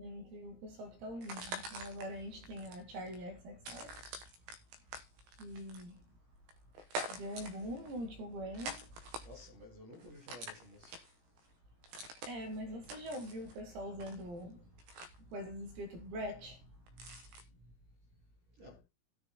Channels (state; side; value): late; left; 17 ms